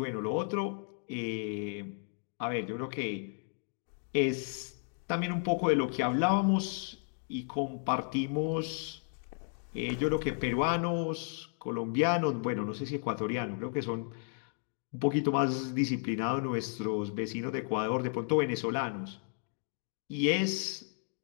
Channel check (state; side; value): silent; right; 55 dB below the other